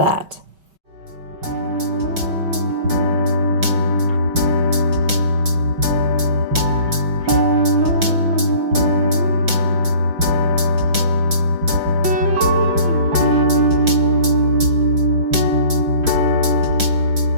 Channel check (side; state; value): left; late; 5.7 ms